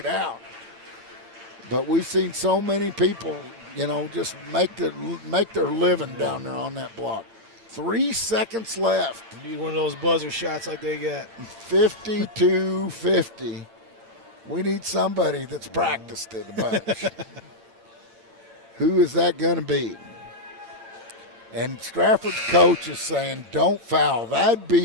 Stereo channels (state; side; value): late; left; 9.2 ms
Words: out. But we've seen so many people, just make their living down there on that block. 3 seconds left. Need one of those buzzer shots like they got. 52-50. We need somebody that's practiced it a bunch. Who is that going to be? And Strafford's coach is saying, don't foul. That'd